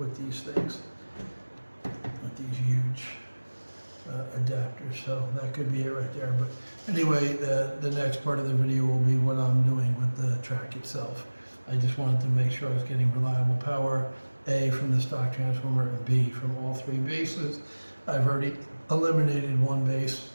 these things, with these huge adapters. So that could be it right there. But anyway, the next part of the video will be what I'm doing with the track itself. I just wanted to make sure I was getting reliable power, A, from the stock transformer, and B, from all three bases. I've already eliminated one base.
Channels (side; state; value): both; inverted; correlation -1.00